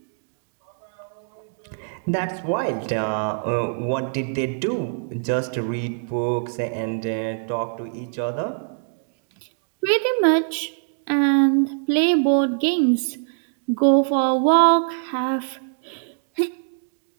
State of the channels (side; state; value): left; silent; digital silence